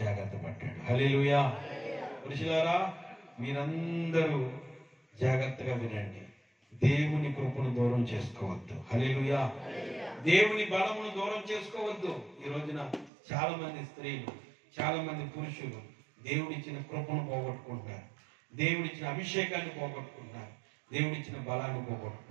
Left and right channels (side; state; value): left; drops out; at 13.1 s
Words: పడ్డాడు. హల్లెలూయా. పురుషులారా మీరందరూ జాగ్రత్తగా వినండి, దేవుని కృపను దూరం చేసుకోవద్దు. హల్లెలూయా. దేవుని బలమును దూరం చేసుకోవద్దు. ఈ రోజున చాలా మంది స్త్రీలు, చాలా మంది పురుషులు దేవుడిచ్చిన కృపను పోగొట్టుకుంటున్నారు, దేవుడిచ్చిన అభిషేకాన్ని పోగొట్టుకుంటున్నారు, దేవుడిచ్చిన బలాన్ని